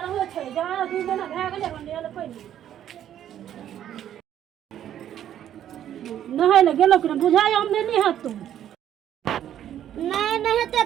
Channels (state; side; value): quieter; left; 10.8 dB